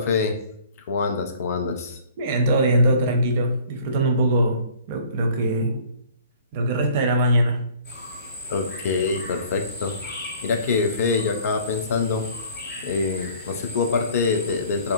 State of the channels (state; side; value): inverted; both; correlation -0.52